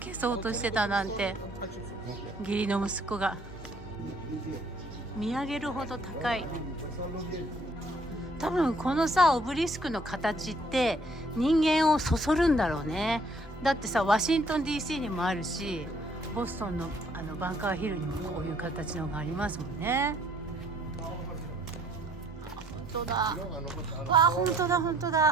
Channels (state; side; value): normal; both; correlation 0.62